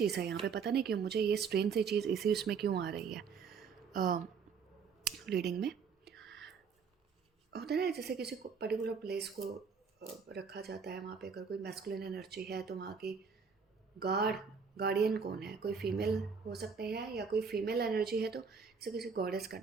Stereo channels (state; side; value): quieter; left; 5.8 dB